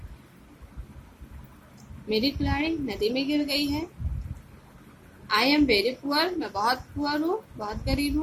मेरी कुल्हाड़ी नदी में गिर गई है। आई एम वेरी पुअर, मैं बहुत पुअर हूँ, बहुत गरीब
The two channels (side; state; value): both; identical; correlation 1.00